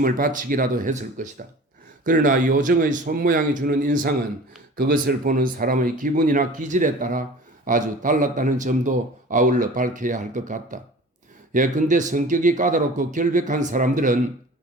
바치기라도 했을 것이다. 그러나 요정의 손모양이 주는 인상은 그것을 보는 사람의 기분이나 기질에 따라 아주 달랐다는 점도 아울러 밝혀야 할 것 같다. 예컨대 성격이 까다롭고 결백한 사람들은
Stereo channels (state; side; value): normal; both; correlation 0.41